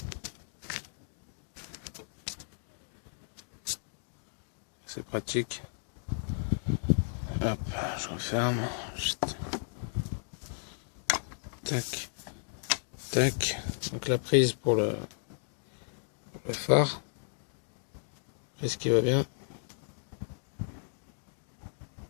C'est pratique. Hop, je referme. Chut. Tac. Tac. Donc la prise pour le phare. Prise qui va bien.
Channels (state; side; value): silent; right; digital silence